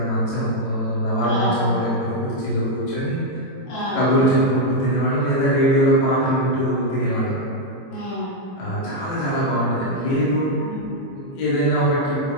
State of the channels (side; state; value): right; late; 22 ms